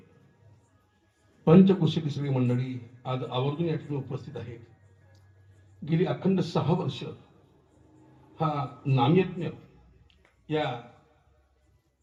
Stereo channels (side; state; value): both; identical; correlation 1.00